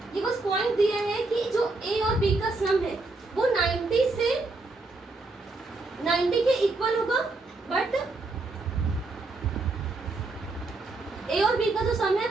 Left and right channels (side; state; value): left; quieter; 3.4 dB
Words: ये बस पॉइंट दिया है कि जो a और b का सम है वो 90 से 90 के इक्वल होगा, बट a और b का जो सम है